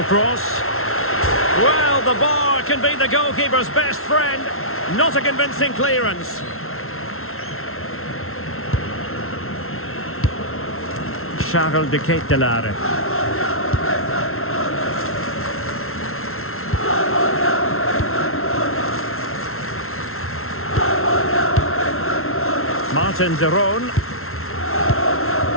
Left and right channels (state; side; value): late; right; 0.62 ms